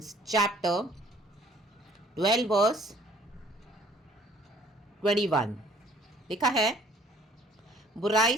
chapter 12 verse 21. लिखा है, बुराई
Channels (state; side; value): normal; both; correlation 0.58